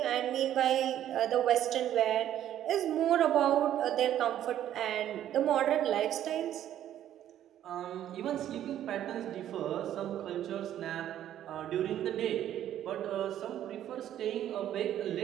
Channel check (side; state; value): left; quieter; 11.4 dB